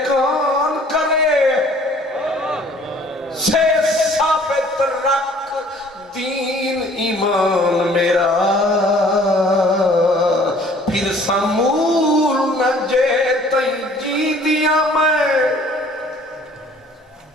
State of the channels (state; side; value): normal; both; correlation 0.54